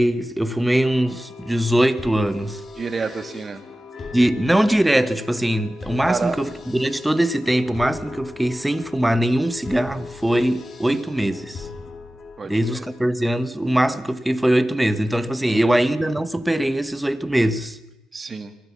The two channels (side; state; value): both; normal; correlation 0.96